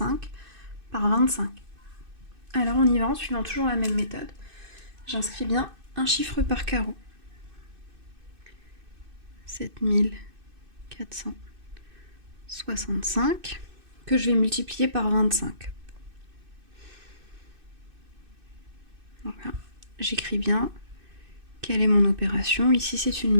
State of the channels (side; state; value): left; late; 2.6 ms